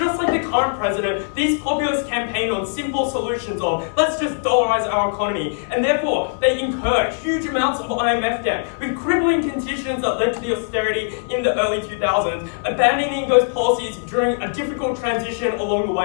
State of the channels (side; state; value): right; silent; digital silence